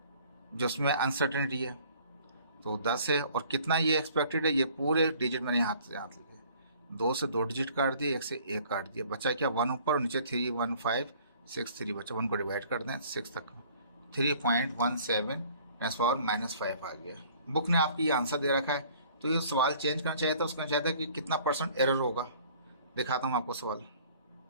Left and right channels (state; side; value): inverted; both; correlation -0.55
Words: जो उसमें अनसर्टेनिटी है, तो 10 है। और कितना ये एक्सपेक्टेड है, ये पूरे डिजिट मैंने हाथ से हाथ लिखे, 2 से 2 डिजिट काट दिए, 1 से 1 काट दिया, बचा क्या 1 ऊपर और नीचे 31563 बचा, 1 को डिवाइड कर दें 6 तक, 3.17 10⁻⁻5 आ गया। बुक ने आपकी ये आंसर दे रखा है, तो ये सवाल चेंज करना चाहिए था, उसका चाहता है कि कितना % एरर होगा। दिखाता हूँ आपको सवाल,